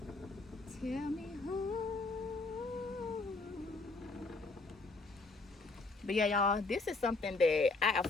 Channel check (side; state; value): right; quieter; 3.5 dB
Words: Tell me who. But yeah, y'all, this is something that I